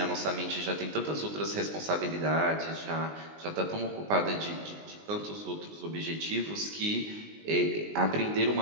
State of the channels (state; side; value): late; left; 19 ms